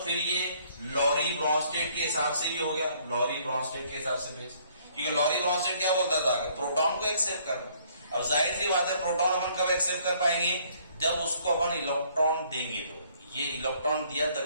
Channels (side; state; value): both; inverted; correlation -0.63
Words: फिर ये लॉरी ब्रॉन्स्टेड के हिसाब से क्या हो गया? लॉरी ब्रॉन्स्टेड के हिसाब से बेस। क्योंकि लॉरी ब्रॉन्स्टेड क्या बोलता था कि प्रोटॉन को एक्सेप्ट करना। अब जाहिर सी बात है प्रोटॉन अपन कब एक्सेप्ट कर पाएंगे? जब उसको अपन इलेक्ट्रॉन देंगे। तो ये इलेक्ट्रॉन दिया